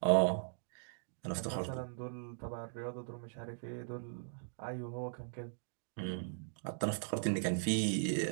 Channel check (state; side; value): silent; left; digital silence